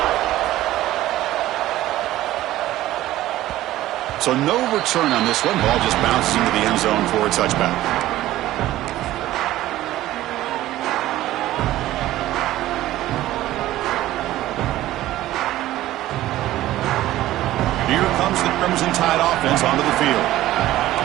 So no return on this one. Ball just bounces into the end zone for a touchback. Here comes the Crimson Tide offense onto the field.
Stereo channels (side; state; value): left; quieter; 15.1 dB